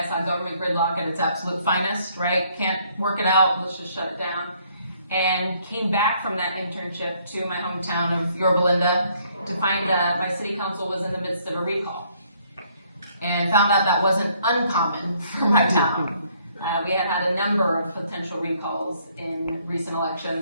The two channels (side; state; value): both; inverted; correlation -0.66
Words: saw government gridlock at its absolute finest, right? Can't work it out, let's just shut it down. And came back from that internship to my hometown of Yorba to find that my city council was in the midst of a recall. And found out that wasn't uncommon for my town. We had had a number of potential recalls in recent